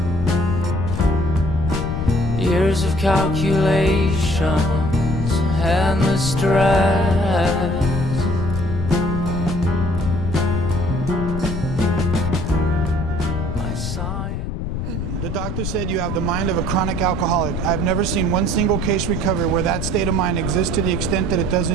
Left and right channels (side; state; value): left; noise; rumble, 4 dB below the sound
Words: Years of calculations and the stress. The doctor said you have the mind of a chronic alcoholic. I've never seen one single case recover where that state of mind exists to the extent that it does